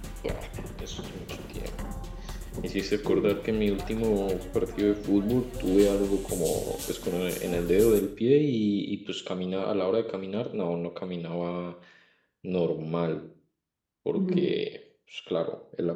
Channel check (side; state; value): both; identical; correlation 1.00